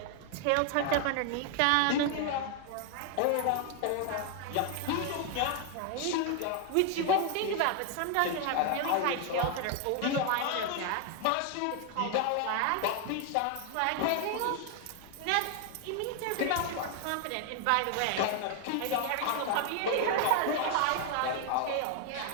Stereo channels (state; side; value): different; both; correlation 0.00